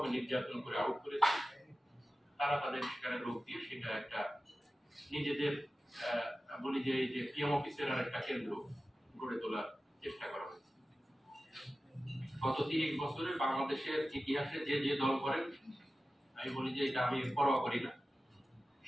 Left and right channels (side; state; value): both; normal; correlation 0.95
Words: নির্যাতন করে আউট করেছি। তারা তাদের সেখানে লোক দিয়ে সেটা একটা নিজেদের বলি যে এই যে পিএম অফিসের আর একটা কেন্দ্র গড়ে তোলার চেষ্টা করা হয়েছে। গত 30 বছরে বাংলাদেশের ইতিহাসে যে যে দল করেন, আমি বলি যে এটা আমি পরোয়া করি না,